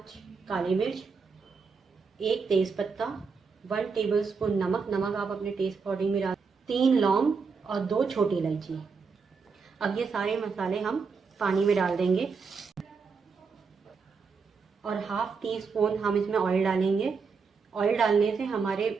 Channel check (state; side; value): quieter; left; 5.2 dB